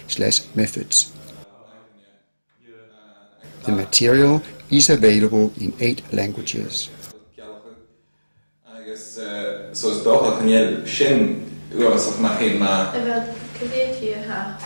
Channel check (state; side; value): inverted; both; correlation -1.00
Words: The material is available in 8 languages.